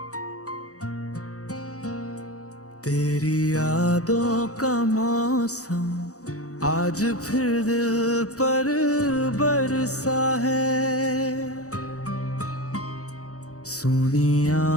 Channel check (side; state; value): right; late; 0.66 ms